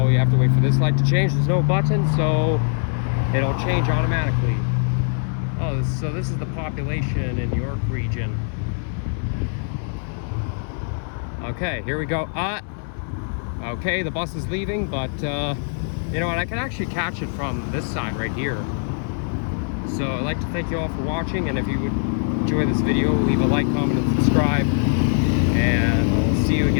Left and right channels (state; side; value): silent; right; 64 dB below the other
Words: you have to wait for this light to change. There's no button, so it'll change automatically. Oh, so this is the population in York region. Okay, here we go. Okay, the bus is leaving, but you know what? I can actually catch it from this side right here. So I'd like to thank you all for watching, and if you would enjoy this video, leave a like, comment, and subscribe. And I'll see you